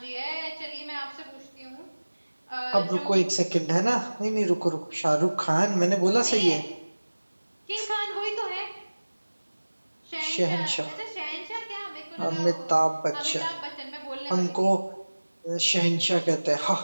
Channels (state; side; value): inverted; both; correlation -1.00